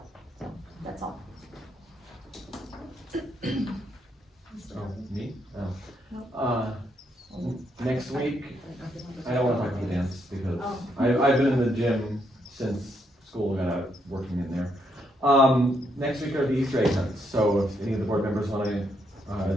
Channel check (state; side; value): normal; both; correlation 0.76